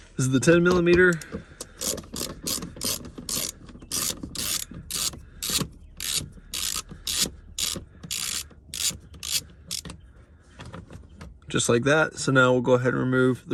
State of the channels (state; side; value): identical; both; correlation 1.00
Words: this is the 10 millimeter. Just like that. So now we'll go ahead and remove